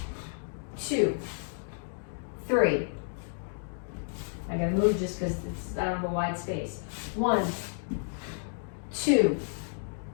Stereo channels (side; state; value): right; silent; digital silence